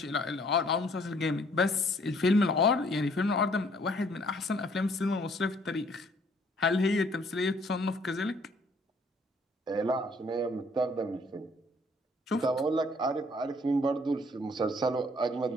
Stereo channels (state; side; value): normal; both; correlation 0.61